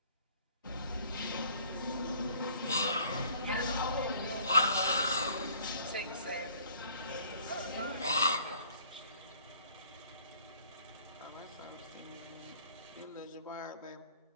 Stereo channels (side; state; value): both; inverted; correlation -0.56